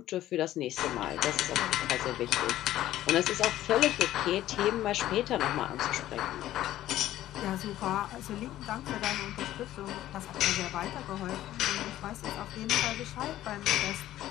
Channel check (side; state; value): right; quieter; 13.8 dB